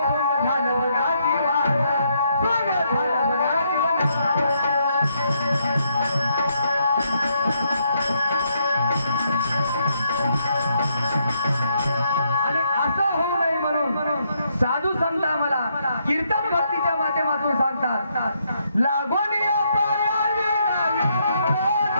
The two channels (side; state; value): both; inverted; correlation -0.75